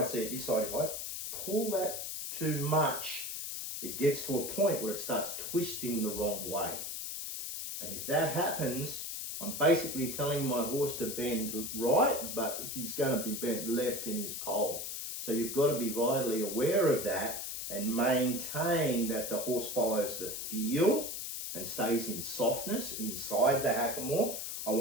see it this side, if I pull that too much, it gets to a point where it starts twisting the wrong way. And if that happens, I'm basically telling my horse to bend right, but he's going to be bent left in his pole. So you've got to be vitally aware of that and maintain that the horse follows the feel and stays in softness inside the hackamore. I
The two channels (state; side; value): noise; left; hiss, 5 dB below the sound